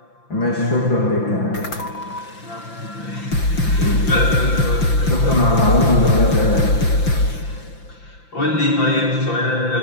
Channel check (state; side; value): late; right; 5.8 ms